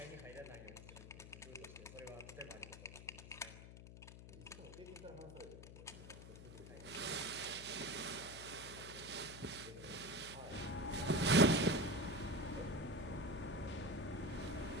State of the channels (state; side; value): noise; left; hum, 13 dB below the sound